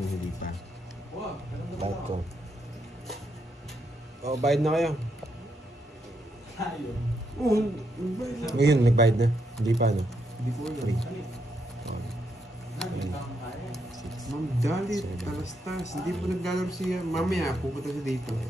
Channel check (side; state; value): both; normal; correlation 0.79